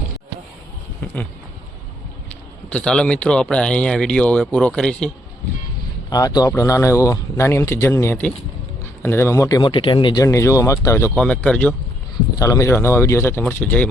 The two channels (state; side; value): normal; both; correlation 0.73